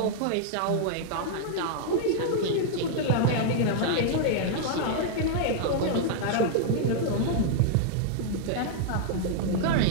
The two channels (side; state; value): both; different; correlation -0.01